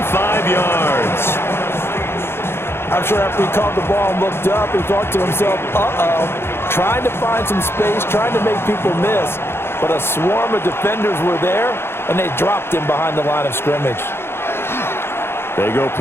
yards. I'm sure after he caught the ball and looked up, he thought to himself, uh-oh, trying to find some space, trying to make people miss. But a swarm of defenders were there, and they dropped him behind the line of scrimmage. They go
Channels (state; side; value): late; right; 0.11 ms